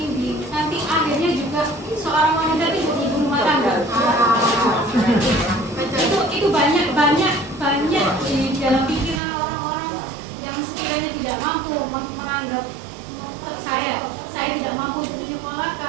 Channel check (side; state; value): left; drops out; at 9.2 s